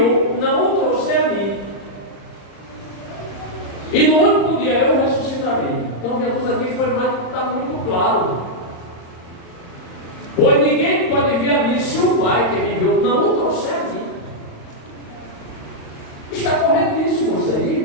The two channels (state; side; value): late; right; 35 ms